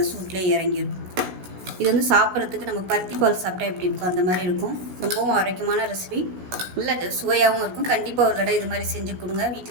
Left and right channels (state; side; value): late; left; 16 ms